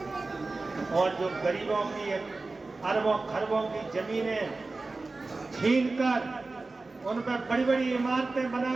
और जो गरीबों की अरबों खरबों की जमीनें छीनकर उन पर बड़ी बड़ी इमारतें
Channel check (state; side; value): quieter; left; 3.5 dB